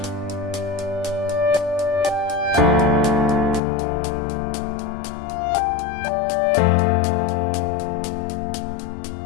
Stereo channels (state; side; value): drops out; right; at 3.6 s